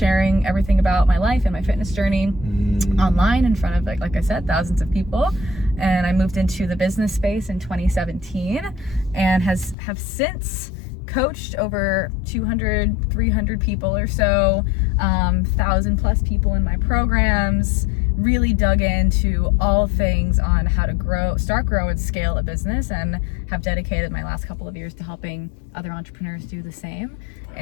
everything about my life and my fitness journey online in front of, like I said, thousands of people. And I moved into the business space in 2017 and have since coached over 200, 300 people or so, 1,000 plus people in my programs, really dug into all things on how to start, grow, and scale a business, and have dedicated my last couple of years to helping other entrepreneurs do the same.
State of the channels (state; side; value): drops out; right; at 9.8 s